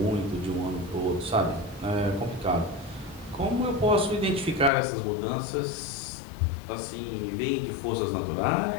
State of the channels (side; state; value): right; drops out; at 4.7 s